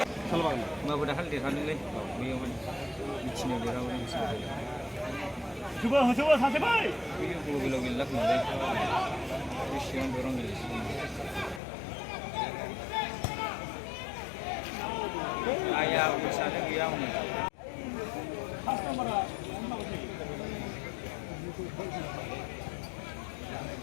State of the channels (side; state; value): right; drops out; at 11.6 s